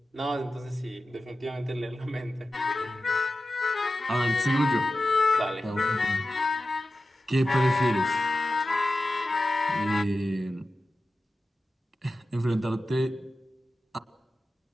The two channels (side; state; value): both; normal; correlation 0.93